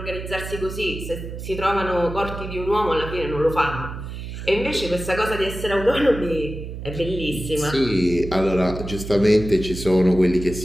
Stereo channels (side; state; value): right; noise; hum, 8 dB below the sound